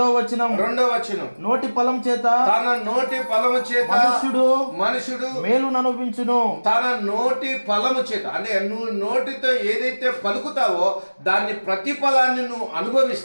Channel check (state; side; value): inverted; both; correlation -1.00